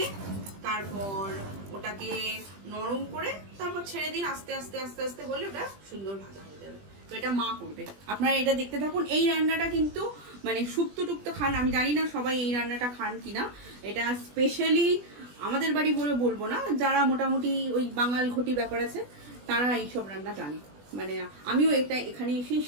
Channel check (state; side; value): late; left; 20 ms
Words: তারপর ওটাকে নরম করে তারপর ছেড়ে দিন, আস্তে আস্তে আস্তে আস্তে হলে ওটা সুন্দর ভাজা হয়ে যাবে। তো এটা মা করবে, আপনারা এটা দেখতে থাকুন। এই রান্নাটা কিন্তু মানে শুক্তো টুক্তো খান, আমি জানি না সবাই এই রান্নাটা খান কিনা। এটা স্পেশালি আমাদের বাড়ি বলে বলবো না, যারা মোটামুটি ওই বাঙাল ঘটি ব্যাপার আছে তারা এইসব রান্না জানে। মানে আমিও এটা এখানে এসেই